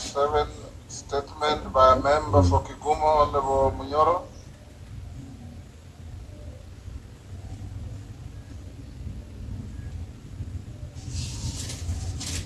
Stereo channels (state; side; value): identical; both; correlation 1.00